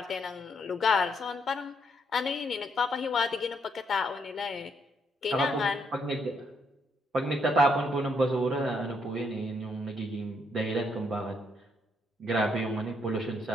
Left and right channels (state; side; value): normal; both; correlation 0.74